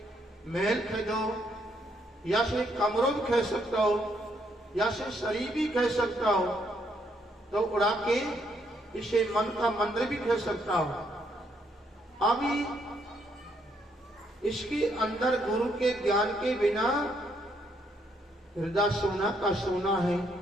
महल खरीदो, या से कमरों भी खरीद सकता हो, या से शरीर भी खरीद सकता हो, तो उड़ा के इसे मन का मंदिर भी खरीद सकता हो। अभी इसके अंदर गुरु के ज्ञान के बिना हृदय सोना का सोना है।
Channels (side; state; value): both; normal; correlation 0.73